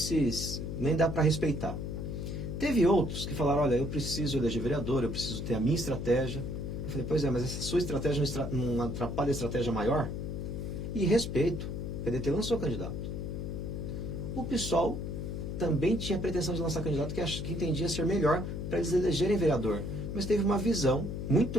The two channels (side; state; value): left; noise; hum, 4 dB below the sound